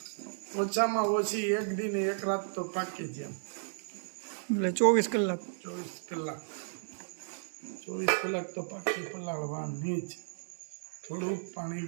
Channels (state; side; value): silent; left; digital silence